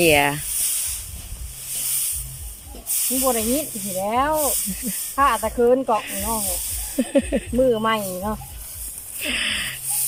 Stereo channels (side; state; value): both; identical; correlation 1.00